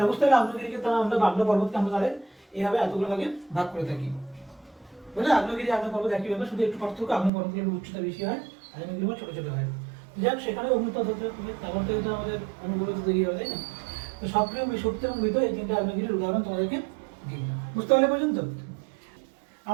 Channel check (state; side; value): drops out; left; at 7.3 s